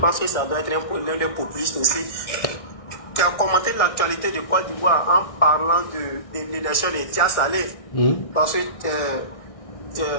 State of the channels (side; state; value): right; late; 1.6 ms